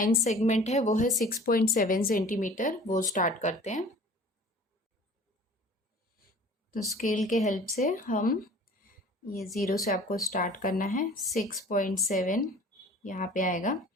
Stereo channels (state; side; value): normal; both; correlation 0.46